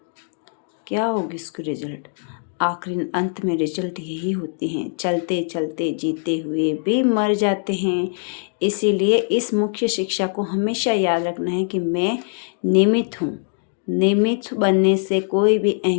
उसकी रिजल्ट? आखिर अंत में रिजल्ट यही होती हैं, चलते चलते जीते हुए भी मर जाते हैं। इसीलिए इस मुख्य शिक्षा को हमेशा याद रखना है कि मैं निमित्त हूँ, निमित्त बनने से कोई भी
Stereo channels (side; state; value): right; silent; 61 dB below the other